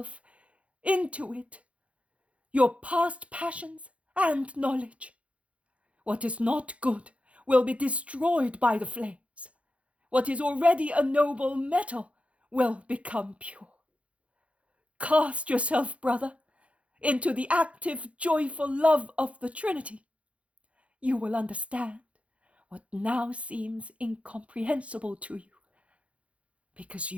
into it, your past passions and knowledge. What is not good will be destroyed by the flames. What is already a noble metal will become pure. Cast yourself, brother, into the active, joyful love of the Trinity. You will understand what now seems incomprehensible to you, because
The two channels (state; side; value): late; left; 0.063 ms